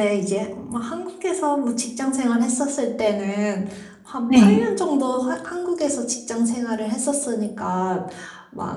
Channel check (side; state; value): both; identical; correlation 1.00